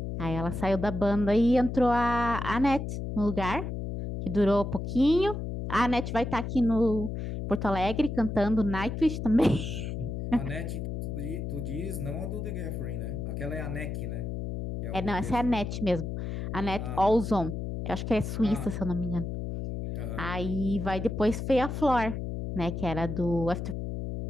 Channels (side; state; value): left; noise; hum, 4 dB below the sound